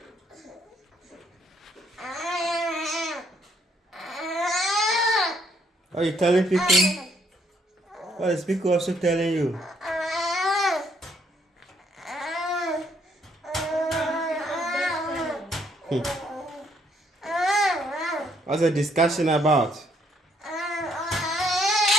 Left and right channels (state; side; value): normal; both; correlation 0.69